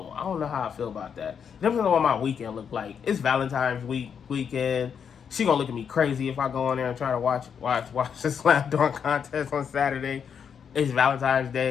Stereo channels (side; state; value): right; quieter; 7.2 dB